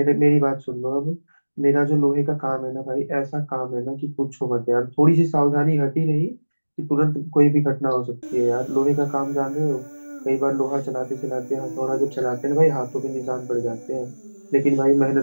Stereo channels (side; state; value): both; inverted; correlation -1.00